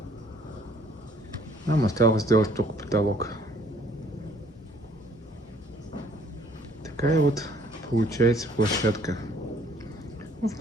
Нам осталось сделать только потолок. Такая вот получается площадка. Ну,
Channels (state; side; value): normal; both; correlation 0.60